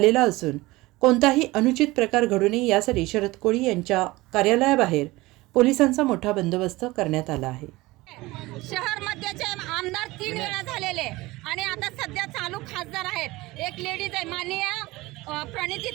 असून कोणताही अनुचित प्रकार घडू नये यासाठी शरद कोळी यांच्या कार्यालयाबाहेर पोलिसांचा मोठा बंदोबस्त करण्यात आला आहे। शहर मध्यचे आमदार 3 वेळा झालेले आणि आता सध्या चालू खासदार आहेत। एक लेडीज आहे माननीय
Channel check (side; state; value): left; quieter; 20.4 dB